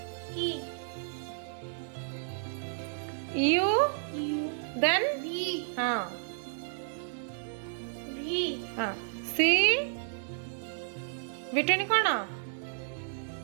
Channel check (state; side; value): silent; left; 56 dB below the other